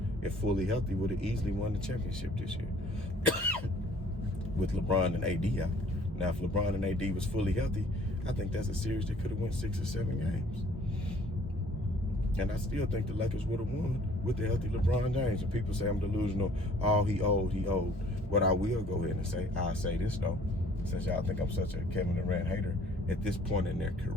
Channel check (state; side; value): normal; both; correlation 0.56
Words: if fully healthy, would have easily won the championship this year with LeBron and AD out. Now, if LeBron and AD was fully healthy, I think that's a series that could have won 6 or 7 games. And I still think the Lakers would have won with the healthy LeBron James. And people say I'm delusional. Oh, he old. What I will go ahead and say, I'll say this, though, since y'all think I'm such a Kevin Durant hater, at this point in their